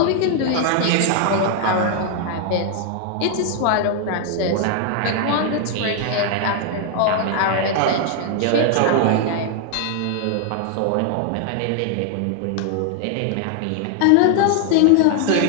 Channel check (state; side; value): different; both; correlation 0.00